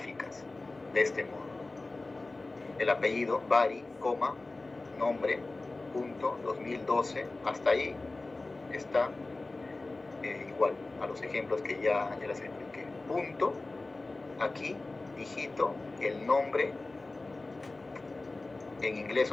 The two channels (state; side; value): quieter; right; 3.2 dB